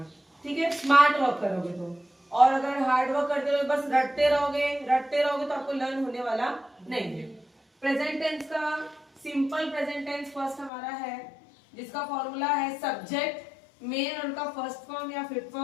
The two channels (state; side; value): drops out; right; at 10.7 s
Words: ठीक है, स्मार्ट वर्क करोगे तो। और अगर हार्ड वर्क करते रहोगे, बस रटते रहोगे तो आपको लर्न होने वाला नहीं है। प्रेजेंट टेंस का सिंपल प्रेजेंट टेंस फर्स्ट हमारा है, जिसका फॉर्मूला है सब्जेक्ट, मेन उनका फर्स्ट फॉर्म या fifth